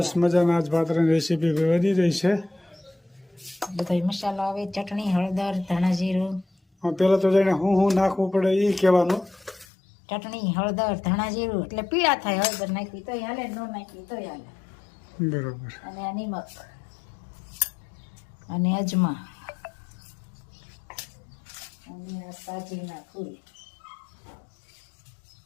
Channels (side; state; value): right; drops out; at 9.7 s